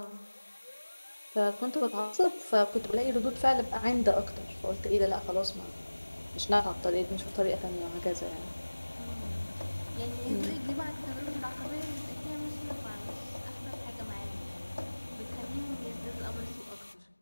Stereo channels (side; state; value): both; inverted; correlation -1.00